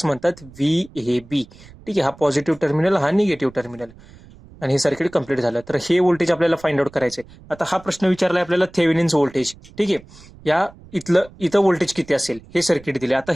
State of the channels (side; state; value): right; noise; rumble, 22 dB below the sound